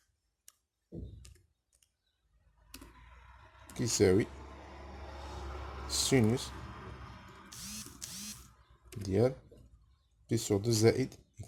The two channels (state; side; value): identical; both; correlation 1.00